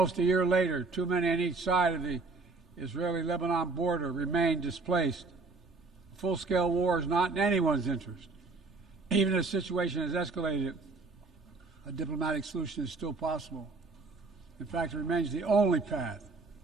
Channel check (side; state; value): left; quieter; 3.8 dB